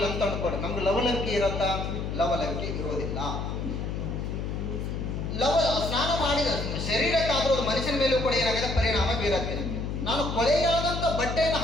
ಅಂತ ಅನ್ಕೊಡಿ, ನಮ್ಗೆ ಲವಲವಿಕೆ ಇರತ್ತಾ? ಲವಲವಿಕೆ ಇರೋದಿಲ್ಲ. ಸ್ನಾನ ಮಾಡಿದ ಶರೀರಕ್ಕಾದ್ರೂ ಅದು ಮನುಷ್ಯನ ಮೇಲೂ ಕೂಡ ಏನಾಗಿದೆ? ಪರಿಣಾಮ ಬೀರುತ್ತೆ. ನಾನು ಕೊಳೆಯಾದಂಥ ಬಟ್ಟೆಯನ್ನು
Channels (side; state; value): left; noise; hum, 3 dB below the sound